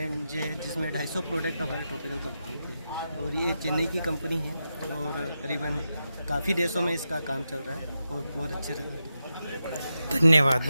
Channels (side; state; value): both; inverted; correlation -0.88